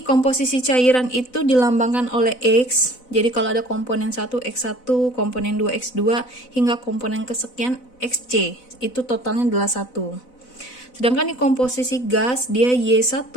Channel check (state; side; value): late; right; 4.0 ms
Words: komposisi cairan itu dilambangkan oleh X. Jadi kalau ada komponen 1 X1, komponen 2 X2 hingga komponen kesekian XC, itu totalnya adalah 1. Sedangkan di komposisi gas dia Y1